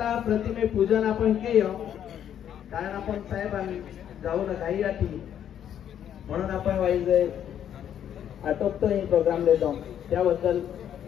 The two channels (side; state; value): right; quieter; 9.8 dB